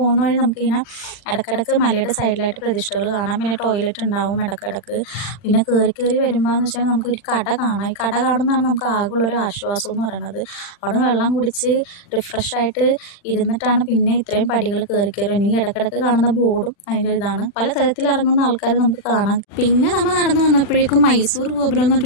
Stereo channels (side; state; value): right; late; 40 ms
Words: വഴി നമുക്കിങ്ങനെ ഇടയ്ക്കിടയ്ക്ക് മലയുടെ സൈഡിലായിട്ട് പ്രതിഷ്ഠകൾ കാണാം. പിന്നെ ടോയ്ലറ്റ് ഉണ്ടാവും ഇടയ്ക്കിടയ്ക്ക്. പിന്നെ കയറി വരുമ്പോൾ എന്ന് വെച്ചാൽ നമുക്കൊരു കട കാണാം. ഈ കട കാണുന്നതാണ് നമുക്ക് ആകെയുള്ളൊരു ആശ്വാസം എന്ന് പറയുന്നത്. അവിടെ നിന്ന് വെള്ളം കുടിച്ച് റിഫ്രഷായിട്ട് ഇരുന്നിട്ടാണ് പിന്നെ ഇത്രയും പടികൾ കയറി ഇനി ഇടയ്ക്കിടയ്ക്ക് കാണുന്ന ബോർഡും അതിൻ്റെ ഇതാണ്. പല തരത്തിൽ ഇറങ്ങുന്ന ആൾക്കാർ നമുക്ക് കാണാം. പിന്നെ നമ്മൾ നടന്നു വന്നപ്പോഴേക്കും മൈസൂർ ഗോപുരം എന്ന്